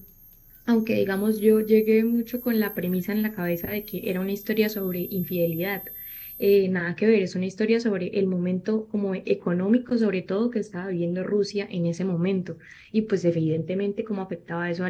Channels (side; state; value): both; identical; correlation 1.00